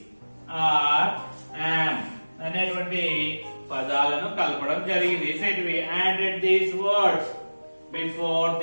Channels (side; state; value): both; inverted; correlation -1.00